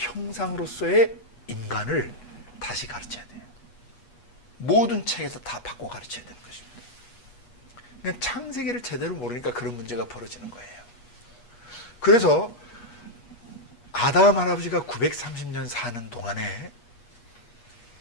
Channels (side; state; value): right; late; 8.3 ms